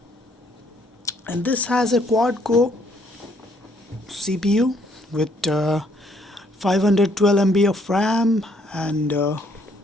And this has a quad-core CPU with 512 MB of RAM and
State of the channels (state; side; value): normal; both; correlation 0.67